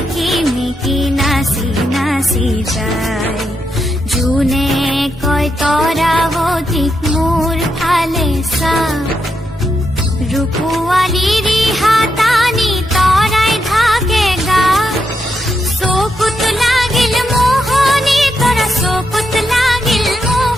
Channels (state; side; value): normal; both; correlation 0.83